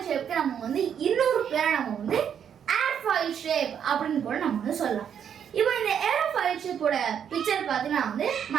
ஷேப்க்கு நம்ம வந்து இன்னொரு பேரை நம்ம வந்து ஏர்ஃபாயில் ஷேப் அப்படின்னு கூட நம்ம வந்து சொல்லலாம். இப்போ இந்த ஏரோஃபாயில் ஷேப்போட பிக்சர் பார்த்தீங்கன்னா வந்து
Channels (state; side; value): quieter; left; 8.4 dB